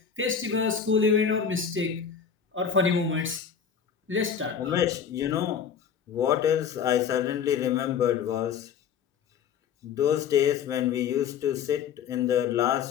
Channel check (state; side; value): quieter; right; 7.3 dB